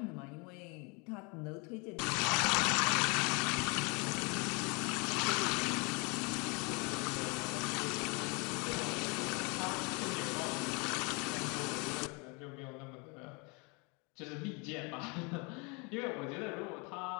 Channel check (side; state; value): right; quieter; 31.0 dB